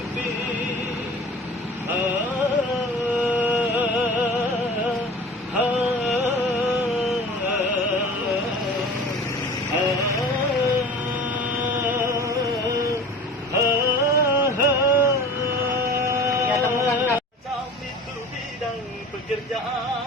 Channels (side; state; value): both; normal; correlation 0.40